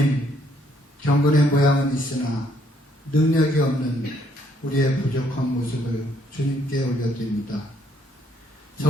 경건의 모양은 있으나 능력이 없는 우리의 부족한 모습을 주님께 올려드립니다.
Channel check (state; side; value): normal; both; correlation 0.68